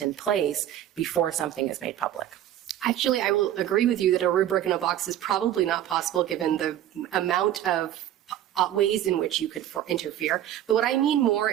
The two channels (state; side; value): quieter; left; 11.9 dB